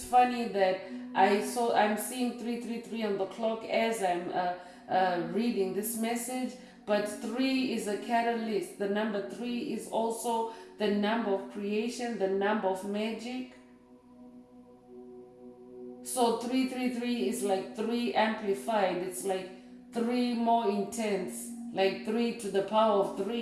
funny that I'm seeing 333 on the clock as I'm reading this message. But 3 is a catalyst. The number 3 is also the number of creation, the number of magic. So 333 is like 3 amplified. It's like 3 more intense, like 3 to the power of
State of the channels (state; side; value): identical; both; correlation 1.00